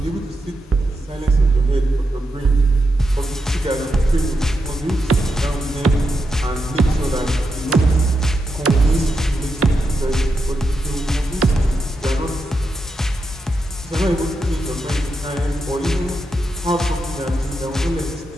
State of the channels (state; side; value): normal; both; correlation 0.86